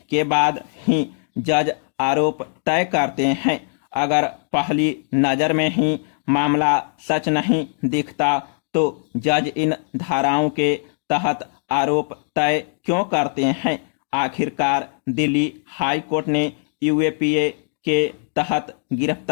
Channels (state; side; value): silent; right; digital silence